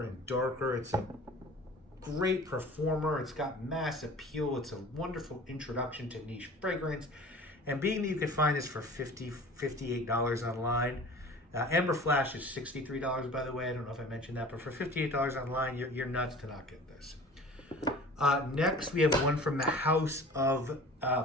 and darker. It's a great performer. It's got mass appeal. It's a wonderful introduction to niche fragrance. And being that you can find this for $58 online, Amber Flash is $63, by the way. I don't know if I mentioned that, but for $58 online, you're nuts to not get this. Next, we have one from the house of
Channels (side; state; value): both; normal; correlation 0.42